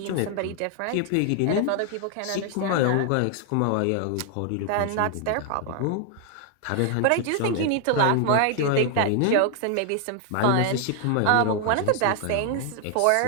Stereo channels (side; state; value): both; different; correlation 0.00